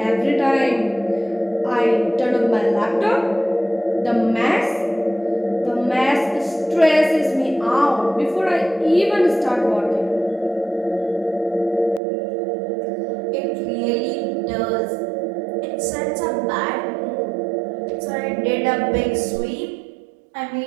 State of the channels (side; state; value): left; drops out; at 12.0 s